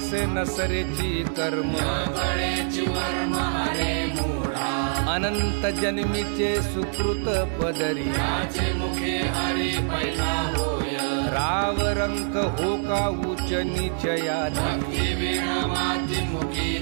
नसरेची कर्म कळेची वर्म अरे मूढा अनंत जन्मीचे सुकृत पदरी त्याचे मुखे हरी पैठा होय राव रंक हो का उच्च नीचयाती दिविण माती मुखी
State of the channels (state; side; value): silent; left; 62 dB below the other